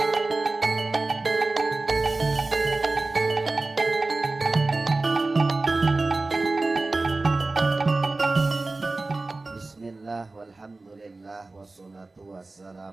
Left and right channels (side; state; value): left; quieter; 3.3 dB